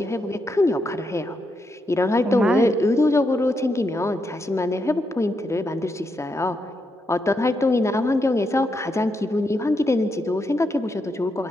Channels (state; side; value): normal; both; correlation 0.82